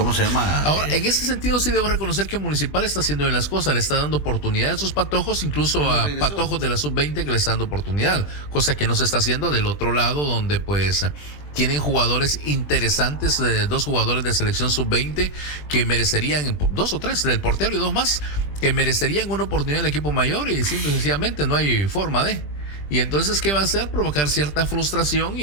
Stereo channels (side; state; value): right; late; 20 ms